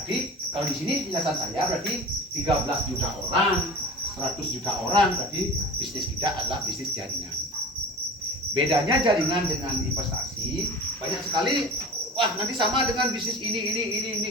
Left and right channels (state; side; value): normal; both; correlation 0.36